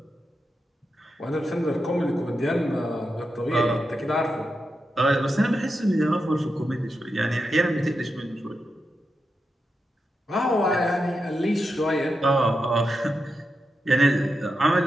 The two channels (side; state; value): both; normal; correlation 0.88